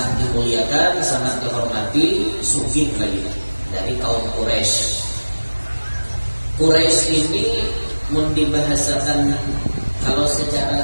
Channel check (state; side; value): inverted; both; correlation -1.00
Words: dimuliakan, sangat dihormati, sugih lagi dari kaum Quraisy. Quraisy ini mun dibahasakan kalau